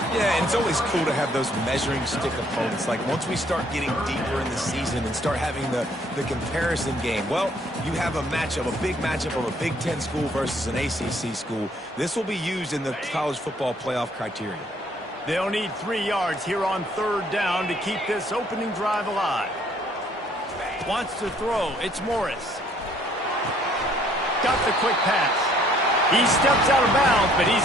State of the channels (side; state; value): both; normal; correlation 0.63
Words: Yeah, and it's always cool to have those measuring stick opponents. Like, once we start getting deeper in the season and start having the comparison game, well, you have a matchup, a big matchup of a Big Ten school versus an ACC school. This will be used in the college football playoff criteria. They'll need 3 yards here on 3rd down to keep this opening drive alive. Wants to throw. It's Morris. Got the quick pass. He steps out of bounds, but